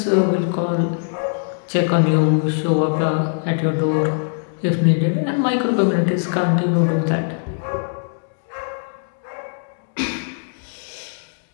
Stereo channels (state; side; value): silent; right; digital silence